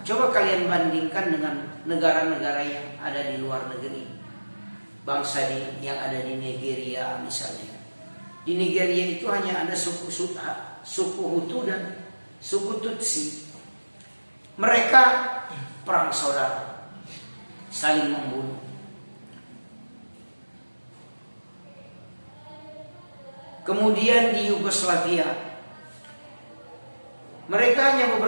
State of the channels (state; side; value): inverted; both; correlation -1.00